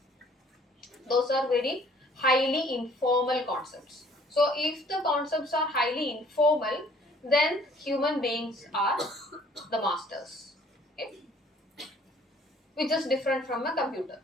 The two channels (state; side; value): normal; both; correlation 0.57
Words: Those are very highly informal concepts. So if the concepts are highly informal, then human beings are the masters, okay? Which is different from a computer.